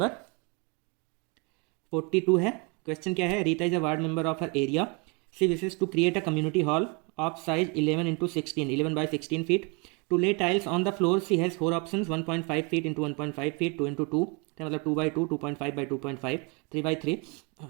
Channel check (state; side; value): quieter; left; 30.9 dB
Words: 42 है। क्वेश्चन क्या है? Rita is a ward member of her area. She wishes to create a community hall of size 11 into 16, 11 by 16 feet. To lay tiles on the floor, she has 4 options: 1.5 feet into 1.5 feet, 2 into 2, मतलब 2 by 2, 2.5 by 2.5, 3 by 3.